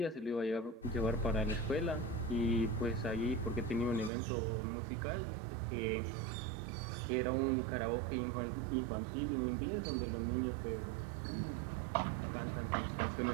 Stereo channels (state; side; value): drops out; left; at 4.1 s